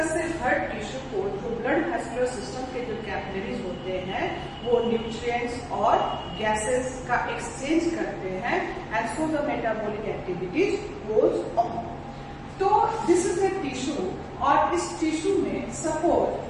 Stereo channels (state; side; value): identical; both; correlation 1.00